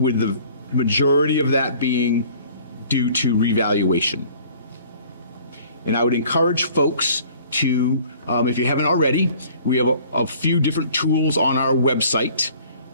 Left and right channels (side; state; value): both; inverted; correlation -0.52